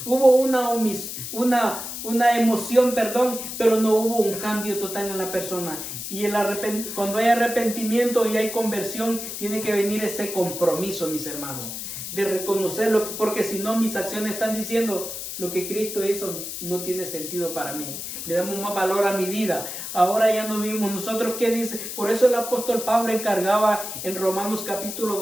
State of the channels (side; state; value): left; noise; hiss, 7 dB below the sound